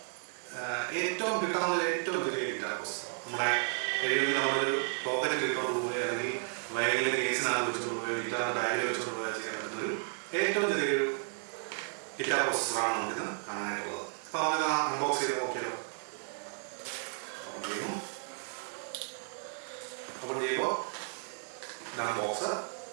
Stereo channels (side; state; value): left; silent; 56 dB below the other